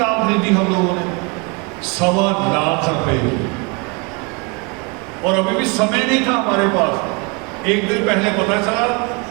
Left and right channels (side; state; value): left; quieter; 29.9 dB